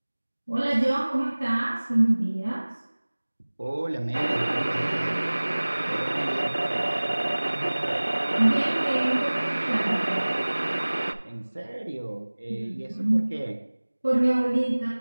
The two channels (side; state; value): both; inverted; correlation -1.00